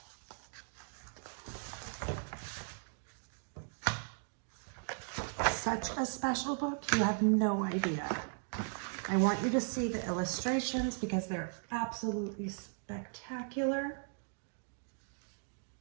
Such a special book, you have no idea. I want you to see the illustrations because they're absolutely spectacular.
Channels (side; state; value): left; silent; 53 dB below the other